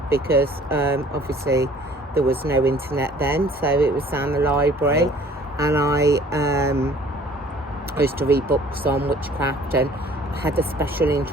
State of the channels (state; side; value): normal; both; correlation 0.53